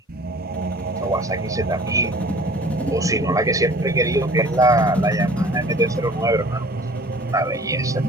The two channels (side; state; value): both; normal; correlation 0.48